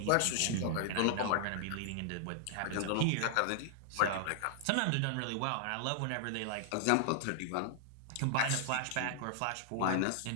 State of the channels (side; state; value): both; different; correlation -0.01